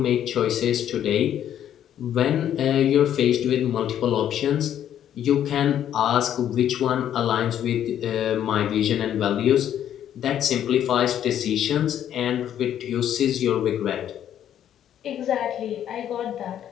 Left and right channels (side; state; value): right; quieter; 10.4 dB